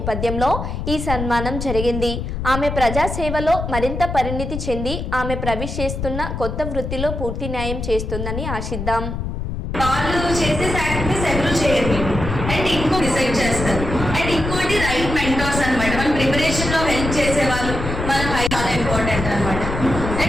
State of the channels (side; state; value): left; noise; rumble, 4 dB below the sound